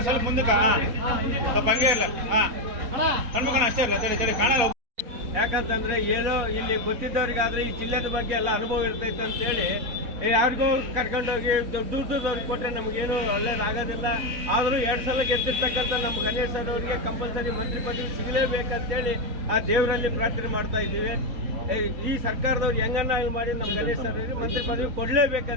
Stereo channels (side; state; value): left; late; 4.2 ms